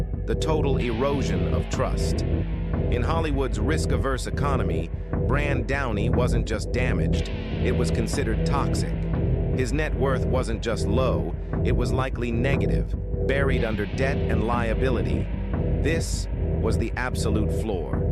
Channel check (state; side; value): identical; both; correlation 1.00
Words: the total erosion of trust. In Hollywood's risk-averse economy, Brand Downey wasn't just damaged, it was considered toxic. His net worth wasn't just low, it was likely negative, buried under debt and liability. This was the absolute floor.